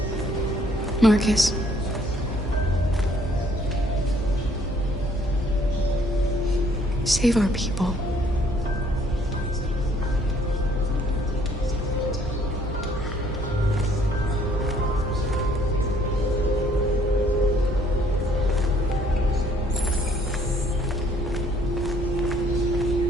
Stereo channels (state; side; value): normal; both; correlation 0.63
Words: Marcus. Save our people.